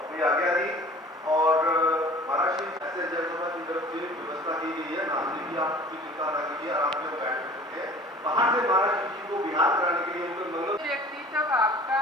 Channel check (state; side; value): normal; both; correlation 0.45